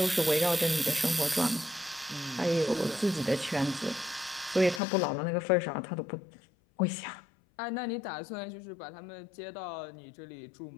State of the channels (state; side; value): drops out; right; at 4.8 s